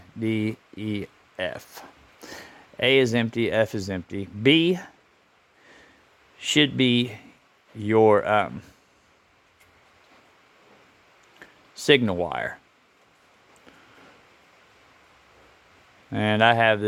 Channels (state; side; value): identical; both; correlation 1.00